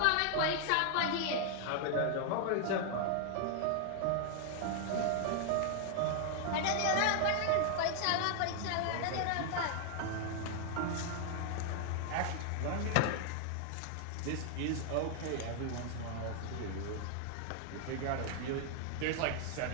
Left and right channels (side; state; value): both; different; correlation 0.00